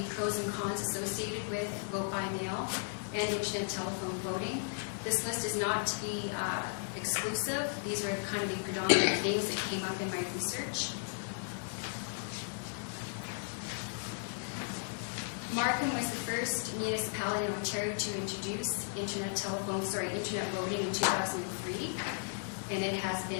pros and cons associated with vote by mail and internet telephone voting. This list is not to be exclusive. These are kind of the predominant things that came up in my research. Markham was the first municipality in Ontario to introduce internet voting in 2003, and it has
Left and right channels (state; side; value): silent; right; 54 dB below the other